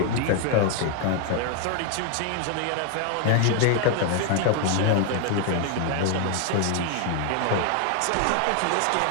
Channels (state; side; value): different; both; correlation 0.00